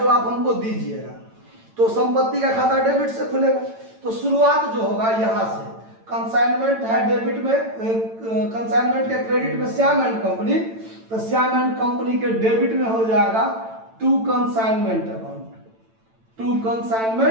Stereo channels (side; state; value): left; late; 8.9 ms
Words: आप हमको दीजिएगा। तो संपत्ति का खाता डेबिट से खुलेगा। तो शुरुआत जो होगा यहाँ से, कंसाइनमेंट है डेबिट में, कंसाइनमेंट के क्रेडिट में श्याम एंड कंपनी, तो श्याम एंड कंपनी के डेबिट में हो जाएगा to consignment account, to